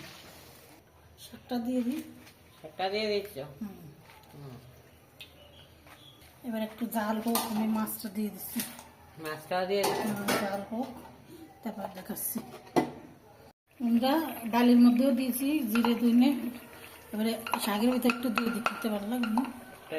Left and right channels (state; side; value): identical; both; correlation 1.00